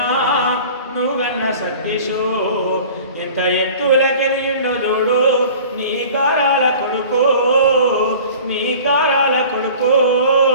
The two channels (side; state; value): both; inverted; correlation -0.43